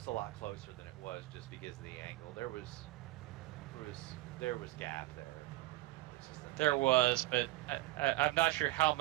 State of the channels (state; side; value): quieter; left; 18.2 dB